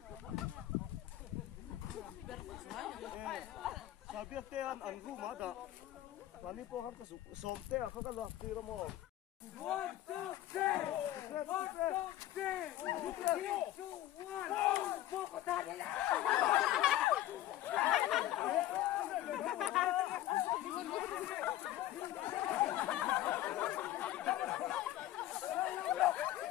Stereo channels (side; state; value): right; quieter; 14.0 dB